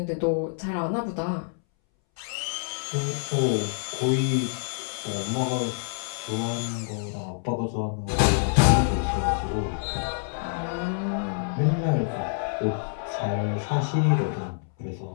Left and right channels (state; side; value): silent; right; 60 dB below the other